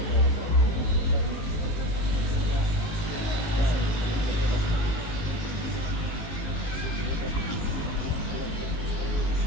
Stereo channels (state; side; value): late; right; 18 ms